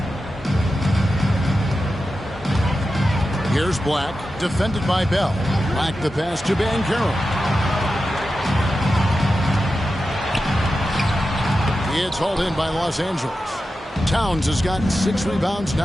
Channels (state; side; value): normal; both; correlation 0.91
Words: Here's Black, defended by Bell. Black the pass to Banchero. It's hauled in by Los Angeles. Towns has gotten 6 rebounds